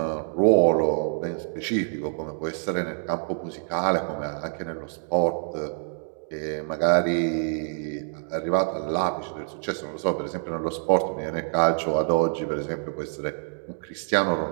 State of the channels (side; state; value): left; silent; digital silence